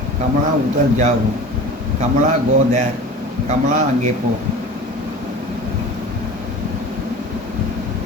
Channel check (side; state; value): both; normal; correlation 0.37